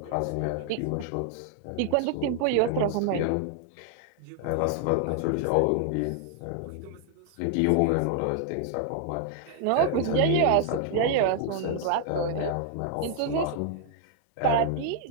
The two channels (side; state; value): both; different; correlation 0.00